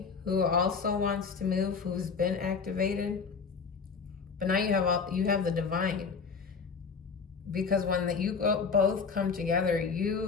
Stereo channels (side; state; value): right; quieter; 5.4 dB